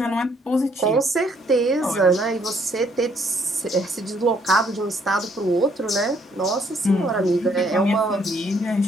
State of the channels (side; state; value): both; normal; correlation 0.67